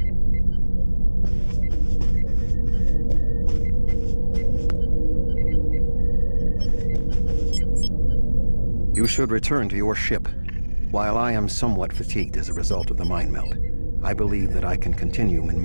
You should return to your ship. While I am somewhat fatigued as a result of the mind meld, I believe that I can continue in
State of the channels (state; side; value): inverted; both; correlation -1.00